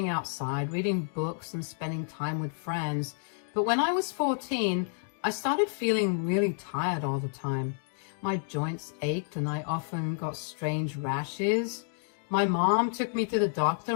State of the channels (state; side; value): silent; right; digital silence